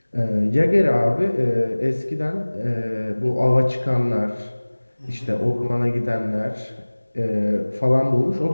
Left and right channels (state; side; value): inverted; both; correlation -1.00